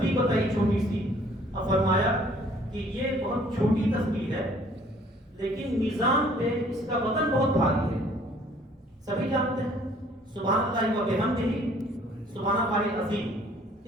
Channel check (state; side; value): normal; both; correlation 0.57